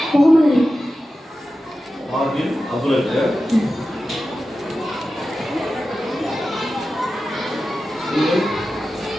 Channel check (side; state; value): both; normal; correlation 0.93